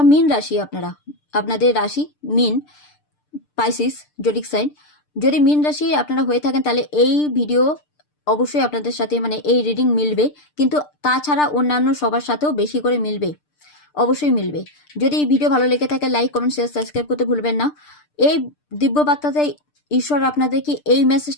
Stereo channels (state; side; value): late; right; 6.7 ms